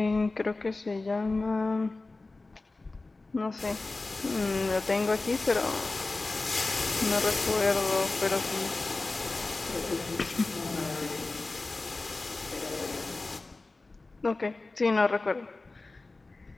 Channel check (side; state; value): right; quieter; 3.3 dB